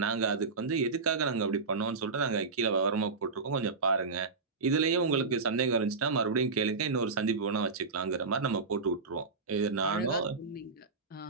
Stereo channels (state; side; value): quieter; left; 4.3 dB